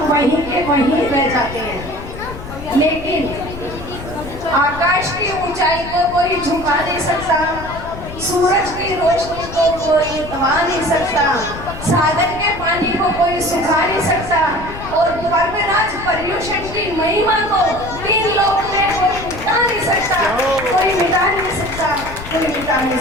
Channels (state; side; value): noise; left; rumble, 12 dB below the sound